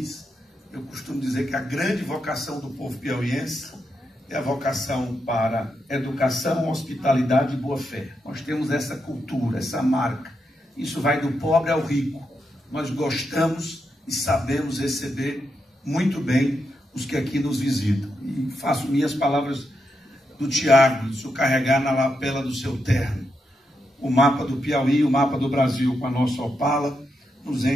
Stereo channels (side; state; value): both; normal; correlation 0.83